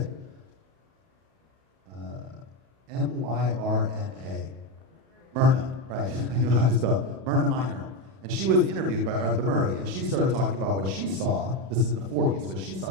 Myrna. Myrna, right? You know how to spell Myrna Minor. And she was interviewed by Arthur Murray, and she started talking about what she saw. This is in the 40s, what she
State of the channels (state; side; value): late; left; 31 ms